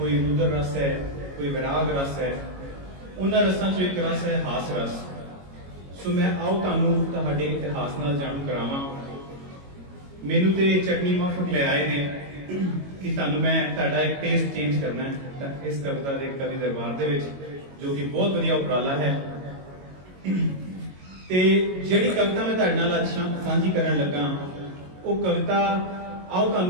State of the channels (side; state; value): left; late; 22 ms